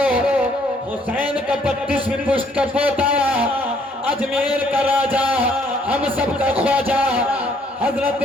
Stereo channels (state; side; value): normal; both; correlation 0.65